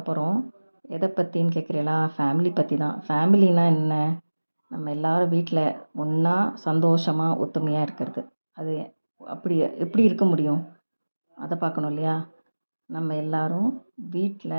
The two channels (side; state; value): both; inverted; correlation -1.00